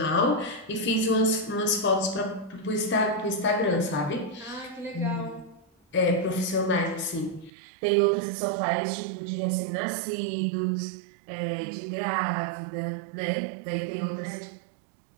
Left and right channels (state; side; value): drops out; left; at 7.5 s